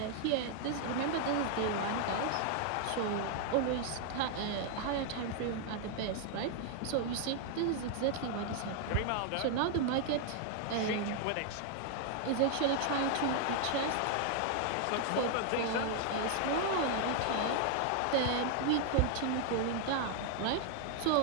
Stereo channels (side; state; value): both; different; correlation 0.00